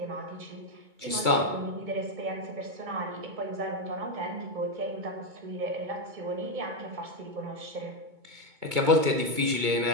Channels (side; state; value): left; late; 2.2 ms